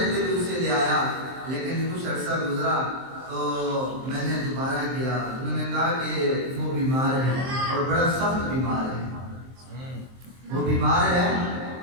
بھی اسے لے آیا، لیکن کچھ عرصہ گزرا تو میں نے دوبارہ کیا، انہوں نے کہا کہ وہ بیمار ہے اور بڑا سخت بیمار ہے، وہ بیمار ہے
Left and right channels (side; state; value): left; late; 23 ms